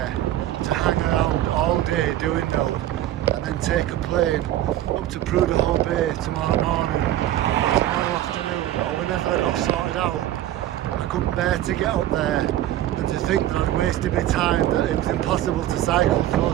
to hang around all day doing nothing and then take a plane up to Prudhoe Bay tomorrow morning, or tomorrow afternoon, or whenever I got sorted out. I couldn't bear to get up there and to think that I'd wasted my time, that it was impossible to cycle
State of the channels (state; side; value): quieter; left; 13.2 dB